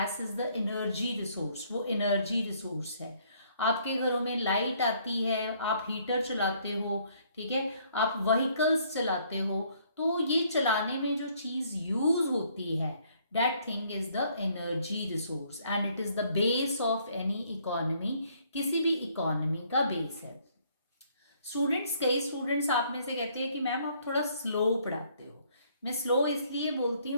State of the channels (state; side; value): inverted; both; correlation -0.65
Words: is the energy resource, वो एनर्जी रिसोर्स है. आपके घरों में लाइट आती है, आप हीटर चलाते हो, ठीक है, आप व्हीकल्स चलाते हो, तो ये चलाने में जो चीज़ यूज होती है that thing is the energy resource and it is the base of any economy. किसी भी इकोनॉमी का बेस है. स्टूडेंट्स, कई स्टूडेंट्स आप में से कहते हैं कि मैम आप थोड़ा स्लो पढ़ाते हो. मैं स्लो इसलिए बोलती